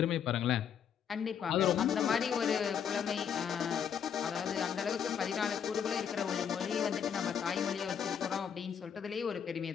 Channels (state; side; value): quieter; right; 8.0 dB